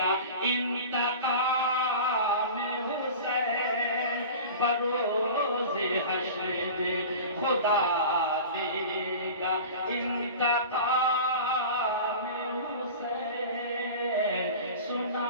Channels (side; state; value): both; inverted; correlation -0.35